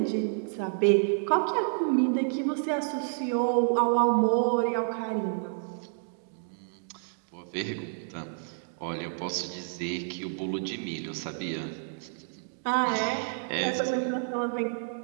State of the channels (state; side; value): silent; left; digital silence